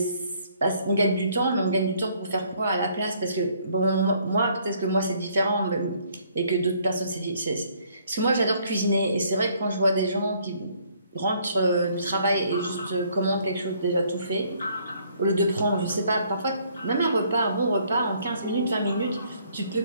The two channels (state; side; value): inverted; both; correlation -0.64